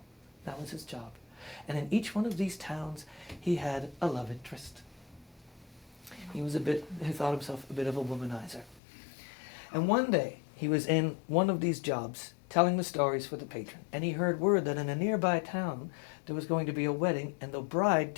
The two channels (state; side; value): drops out; right; at 8.8 s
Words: That was his job. And in each one of these towns, he had a love interest. He thought himself a bit of a womanizer. And one day, he was in one of these jobs, telling the stories for the patron, and he heard word that in a nearby town, there was going to be a wedding, and the